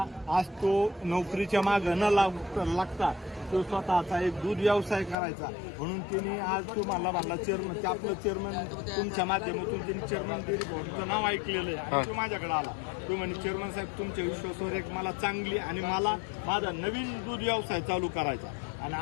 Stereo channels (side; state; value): right; drops out; at 5.2 s